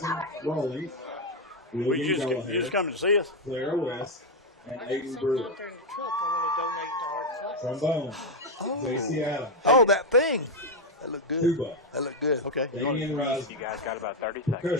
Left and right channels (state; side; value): normal; both; correlation 0.04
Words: Rawlings. You William just Gallagher, coming to see us? Clara West, and Aiden Brewer. Trombone, J.C. Adams. Oh, that thing. That looked good. Tuba, That looked good. Okay. Damian Risner. You guys got about 30 seconds.